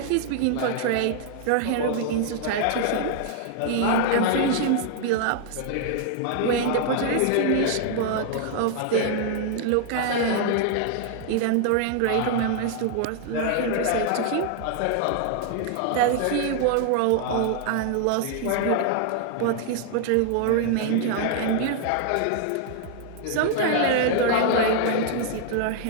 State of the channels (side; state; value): both; different; correlation 0.00